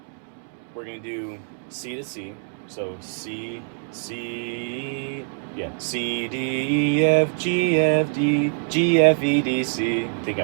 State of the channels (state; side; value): silent; left; digital silence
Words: we're going to do C to C. So C, C, D, E, F, G, F, D, G, F, E, D, C. I think I